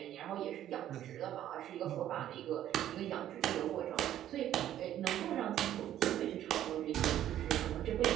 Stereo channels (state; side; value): quieter; left; 11.8 dB